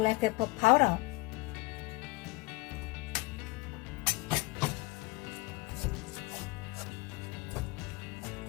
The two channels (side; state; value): right; quieter; 22.7 dB